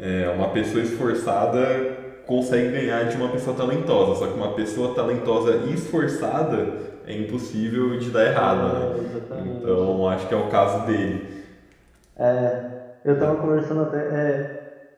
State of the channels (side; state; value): both; identical; correlation 1.00